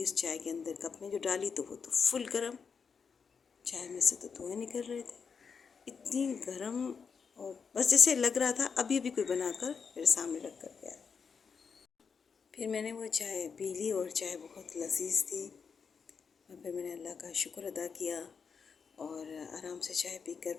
उस चाय के अंदर कप में जो डाली तो वो तो फुल गर्म, चाय में से तो धुएं निकल रहे थे, इतनी गर्म। और बस जैसे लग रहा था अभी अभी कोई बनाकर मेरे सामने रख कर गया। फिर मैंने वो चाय पी ली और चाय बहुत लजीज थी और फिर मैंने अल्लाह का शुक्र अदा किया और आराम से चाय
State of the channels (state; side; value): quieter; right; 5.9 dB